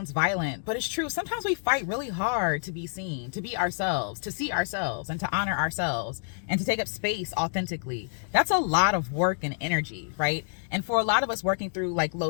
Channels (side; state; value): right; silent; digital silence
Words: violent, but it's true. Sometimes we fight really hard to be seen, to be ourselves, to see ourselves, and to honor ourselves, and to take up space authentically. That's a lot of work and energy, right? And for a lot of us working through like low